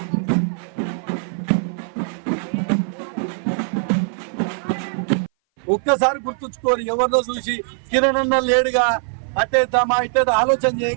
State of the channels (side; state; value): left; silent; 59 dB below the other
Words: ఒక్కసారి గుర్తుంచుకోరు, ఎవరినో చూసి కిరణ్ అన్న లేడుగా అట్టేద్దామా ఇట్టేదా ఆలోచన